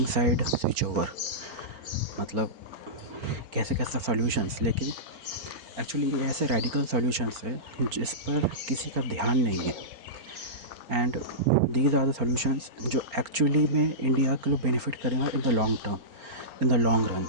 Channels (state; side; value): late; left; 4.5 ms